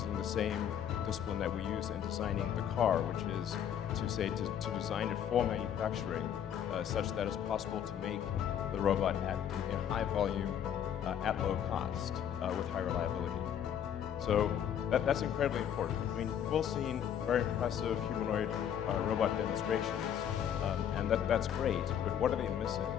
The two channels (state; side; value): quieter; right; 9.3 dB